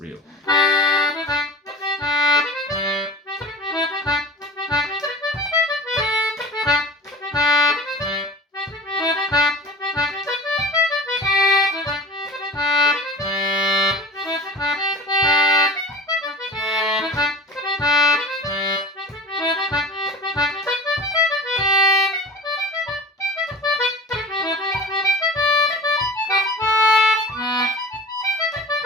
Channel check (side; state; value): both; normal; correlation 0.38